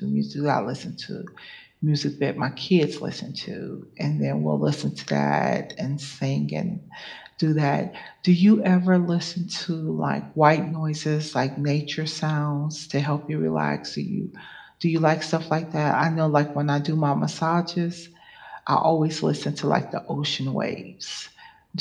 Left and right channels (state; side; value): identical; both; correlation 1.00